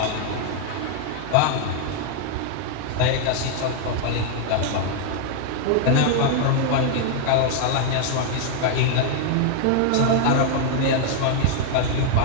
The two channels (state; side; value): different; both; correlation 0.00